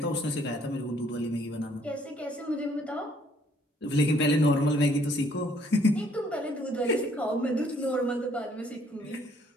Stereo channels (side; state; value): both; normal; correlation 0.64